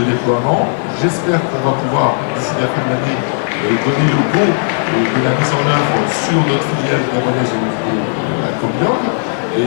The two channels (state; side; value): silent; right; 70 dB below the other